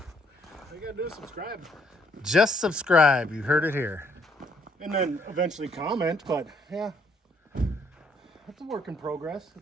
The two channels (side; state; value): both; normal; correlation 0.68